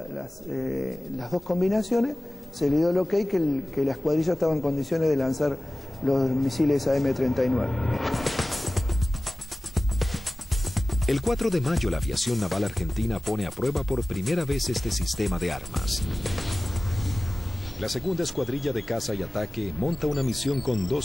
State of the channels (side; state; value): both; normal; correlation 0.97